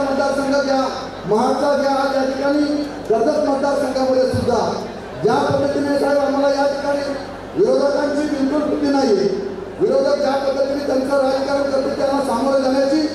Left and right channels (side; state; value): both; identical; correlation 1.00